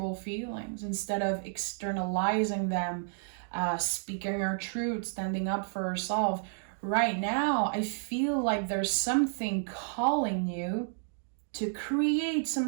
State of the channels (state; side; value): silent; left; digital silence